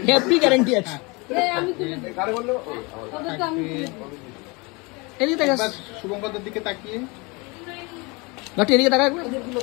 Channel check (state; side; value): quieter; right; 27.4 dB